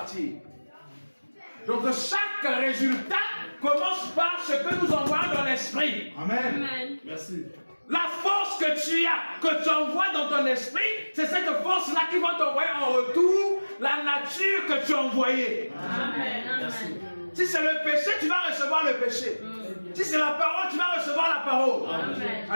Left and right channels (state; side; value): inverted; both; correlation -1.00